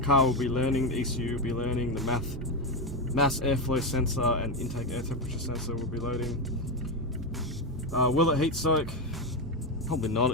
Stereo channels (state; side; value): normal; both; correlation 0.11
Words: car will be learning, the ECU will be learning, the mass airflow sensor and intake air temperature sensor will be loading. Will it heat soak? Probably not,